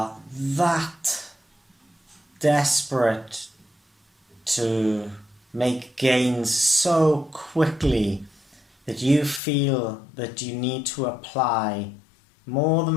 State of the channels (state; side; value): drops out; right; at 9.4 s